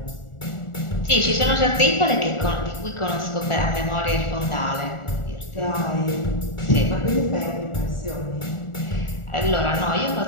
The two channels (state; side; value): late; right; 1.4 ms